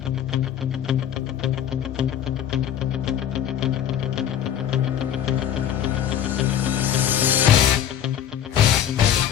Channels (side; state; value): right; quieter; 10.0 dB